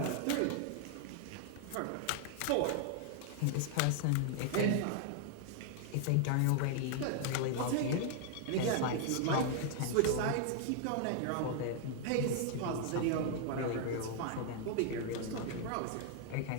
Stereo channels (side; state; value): both; different; correlation 0.00